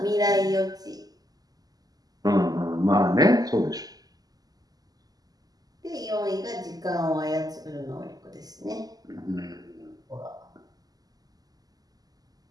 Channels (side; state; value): left; late; 0.18 ms